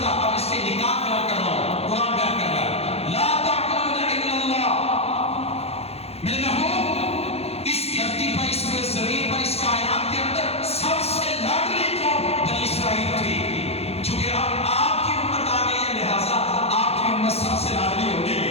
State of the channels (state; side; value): late; right; 0.29 ms